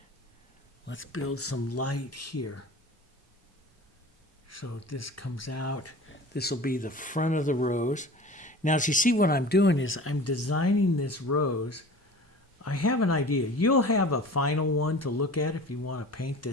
Let's build some light here. So this comes out. This will be the front of the rose. Now, as you see, what I'm doing is I'm designing this rose. I have an idea. You'll have a final one to look at if you want to paint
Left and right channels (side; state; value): both; normal; correlation 0.39